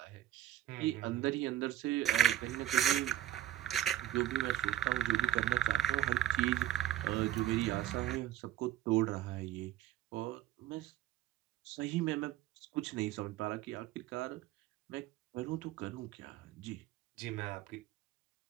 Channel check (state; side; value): quieter; left; 12.6 dB